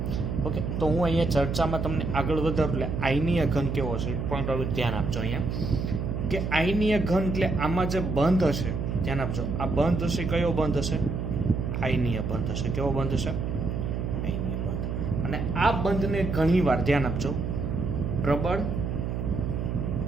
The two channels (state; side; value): noise; right; hum, 2 dB below the sound